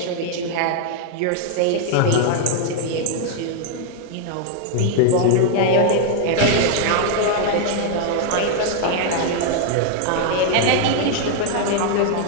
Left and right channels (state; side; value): different; both; correlation 0.00